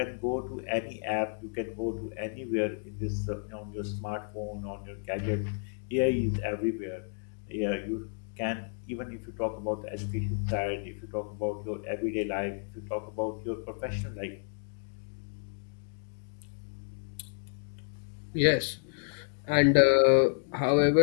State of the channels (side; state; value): right; silent; 57 dB below the other